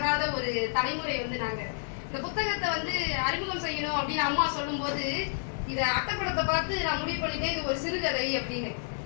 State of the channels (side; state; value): right; silent; 58 dB below the other